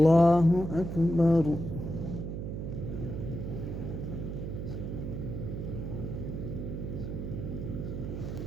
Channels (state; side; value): noise; right; hum, 5 dB below the sound